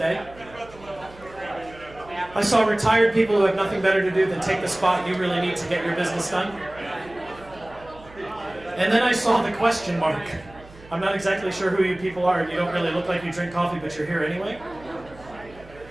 I saw retired people who have nothing better to do than take the spot you really need to get your business done. And then I saw the question mark. I'm not exactly sure who you people are, and you don't really look like you drink coffee, but you're here anyway.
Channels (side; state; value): right; noise; hum, 21 dB below the sound